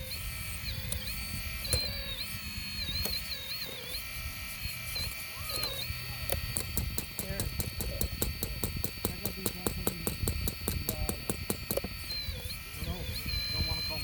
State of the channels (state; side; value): identical; both; correlation 1.00